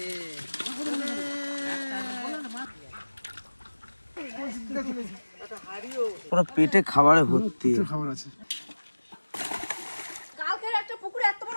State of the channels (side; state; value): both; inverted; correlation -1.00